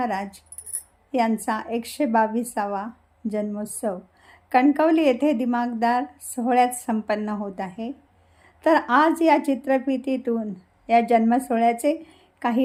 यांचा 122वा जन्मोत्सव कणकवली येथे दिमागदार सोहळ्यात संपन्न होत आहे. तर आज या चित्रफितीतून या जन्मसोहळ्याचे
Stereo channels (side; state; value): both; identical; correlation 1.00